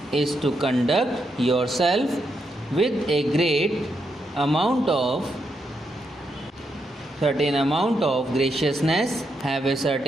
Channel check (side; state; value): both; normal; correlation 0.81